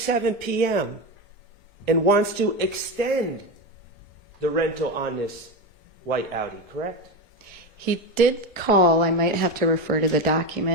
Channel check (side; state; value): both; normal; correlation 0.17